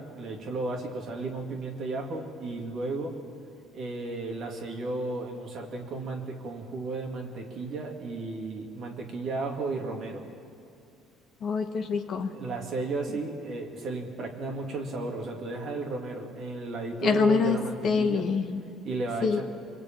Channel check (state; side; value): normal; both; correlation 0.67